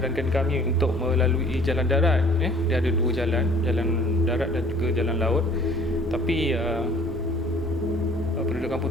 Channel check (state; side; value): normal; both; correlation 0.53